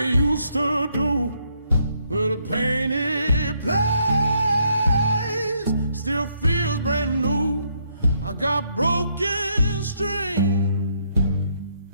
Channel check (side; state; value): both; inverted; correlation -0.73